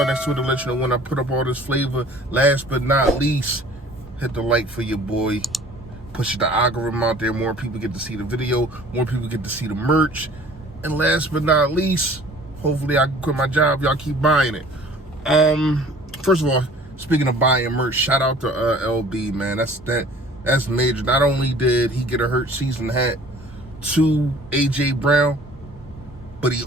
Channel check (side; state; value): both; normal; correlation 0.50